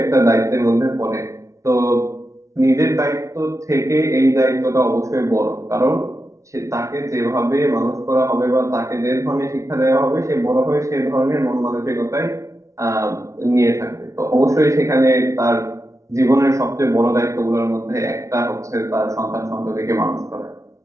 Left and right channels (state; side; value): late; left; 0.15 ms